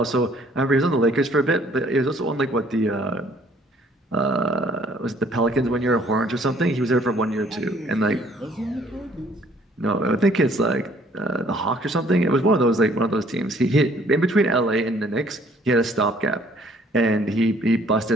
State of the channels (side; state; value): both; normal; correlation 0.60